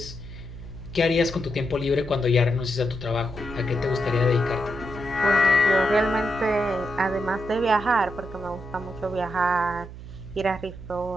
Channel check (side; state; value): right; noise; hum, 13 dB below the sound